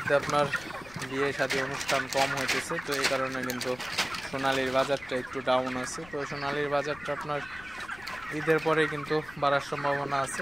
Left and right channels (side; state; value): left; noise; rumble, 20 dB below the sound